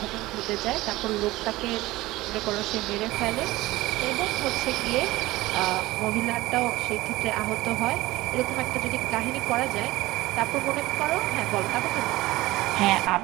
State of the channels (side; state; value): left; quieter; 18.6 dB